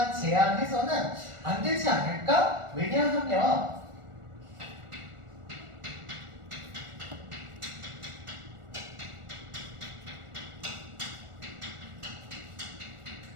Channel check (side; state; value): left; late; 1.4 ms